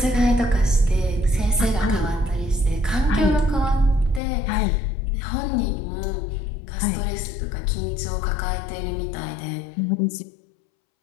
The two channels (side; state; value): right; drops out; at 4.2 s